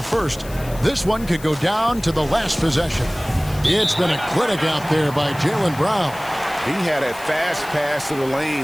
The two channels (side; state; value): left; noise; hiss, 18 dB below the sound